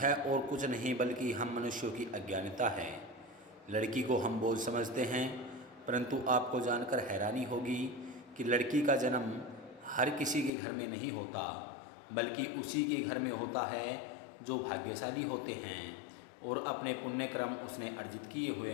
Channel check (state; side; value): drops out; right; at 10.5 s